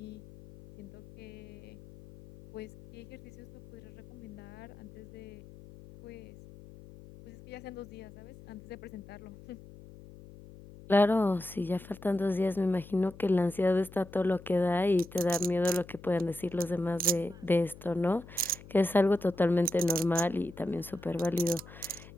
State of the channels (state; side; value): noise; left; hum, 18 dB below the sound